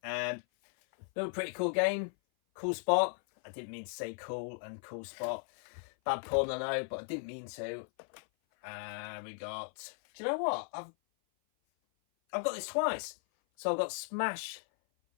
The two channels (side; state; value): right; silent; 54 dB below the other